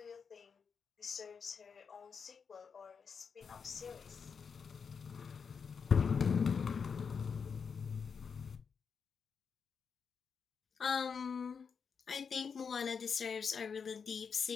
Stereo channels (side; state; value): right; quieter; 6.1 dB